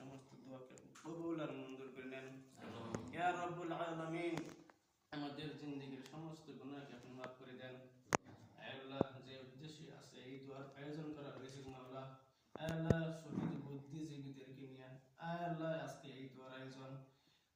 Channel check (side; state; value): both; identical; correlation 1.00